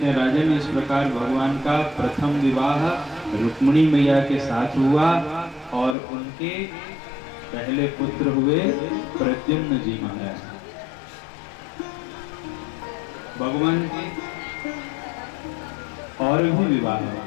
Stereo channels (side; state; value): right; drops out; at 6.0 s